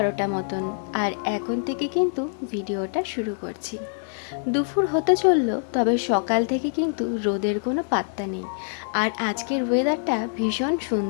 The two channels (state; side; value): silent; right; 57 dB below the other